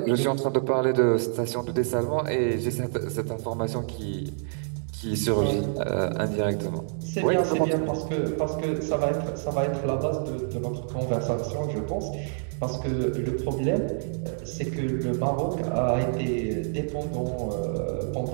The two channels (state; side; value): silent; left; digital silence